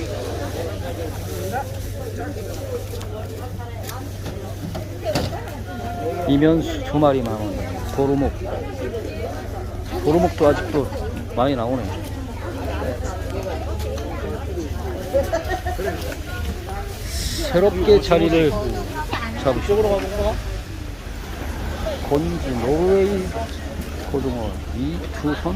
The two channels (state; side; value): identical; both; correlation 1.00